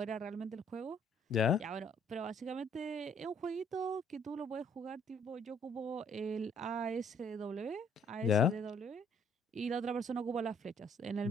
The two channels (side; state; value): both; normal; correlation 0.64